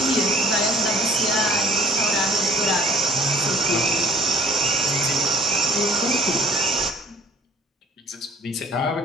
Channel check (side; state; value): both; normal; correlation 0.54